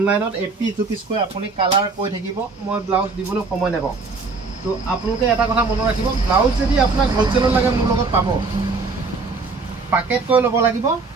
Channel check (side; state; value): left; quieter; 4.1 dB